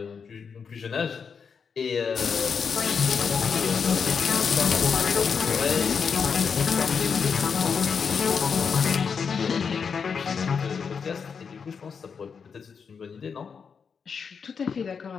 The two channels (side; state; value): right; quieter; 6.1 dB